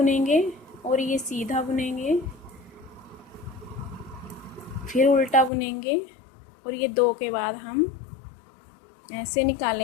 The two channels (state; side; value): drops out; right; at 5.5 s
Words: और ये सीधा बुनेंगे, फिर उल्टा बुनेंगे और ये दो के बाद हम ऐसे